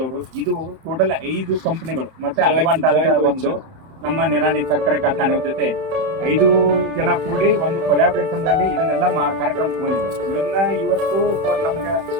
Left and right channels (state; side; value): late; left; 31 ms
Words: ಇದು ಟೋಟಲ್ 5 ಕಂಪನಿಗಳು ಮತ್ತೆ ಅಡ್ವಾಂಟ ಅಂತ ಒಂದು ನಮ್ಮ ನಿರಾಣಿ ಸಕ್ಕರೆ ಕಾರ್ಖಾನೆ ಜೊತೆ 5 ಜನ ಕೂಡಿ ಒಂದು ಕೊಲಾಬ್ರೇಷನ್ ನಲ್ಲಿ ಇದನ್ನೆಲ್ಲ ಕಾರ್ಯಕ್ರಮ ತಗೊಂಡಿದೆ. ಇದನ್ನ ಇವತ್ತು ನಮ್ಗೆ